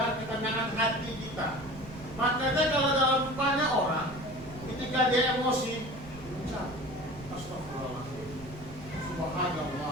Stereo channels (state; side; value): noise; right; rumble, 16 dB below the sound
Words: ketenangan hati kita. Makanya kalau dalam banyak orang ketika Ketika dia emosi, ucap astagfirullahaladzim,